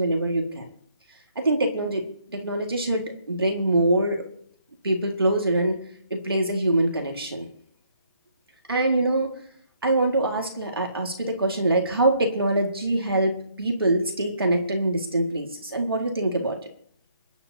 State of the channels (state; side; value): inverted; both; correlation -0.69